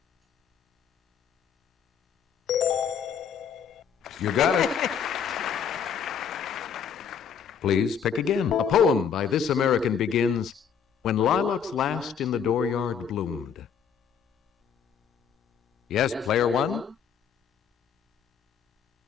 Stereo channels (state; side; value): quieter; right; 7.4 dB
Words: You got it. Please pick again. A poem by this American begins, "When lilacs last in the dooryard bloomed." Yes, Player 1?